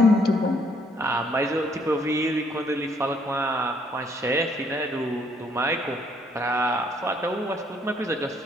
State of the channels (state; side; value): normal; both; correlation 0.67